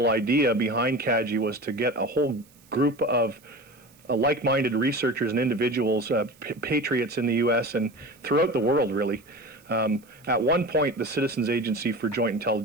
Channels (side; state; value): right; noise; hiss, 29 dB below the sound